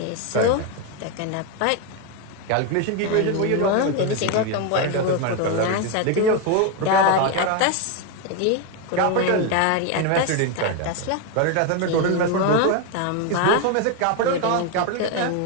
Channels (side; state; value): both; different; correlation 0.02